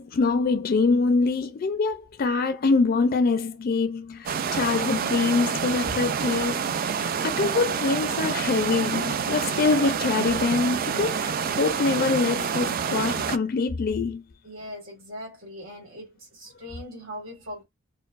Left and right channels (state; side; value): normal; both; correlation 0.30